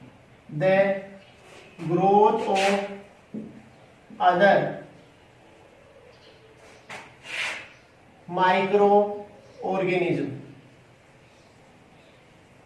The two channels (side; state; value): both; identical; correlation 1.00